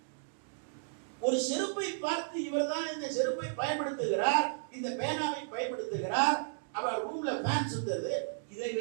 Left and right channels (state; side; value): silent; left; digital silence